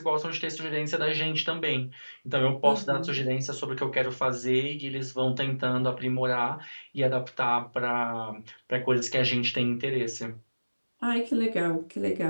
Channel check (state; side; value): inverted; both; correlation -1.00